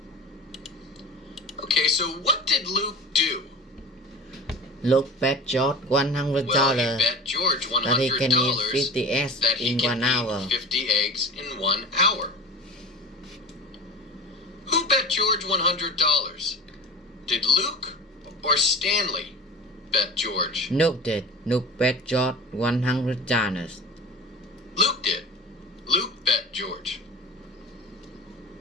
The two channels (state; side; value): normal; both; correlation 0.35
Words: Okay, so what did Luke do? Luke bet George Well, he $100 bet George that he can eat $100 50 eggs that he in can 1 hour. eat 50 eggs in 1 hour. Who bet George $100? Did Luke or Stanley bet George? Luke did. Luke bet George $100. Luke did. Luke bet George.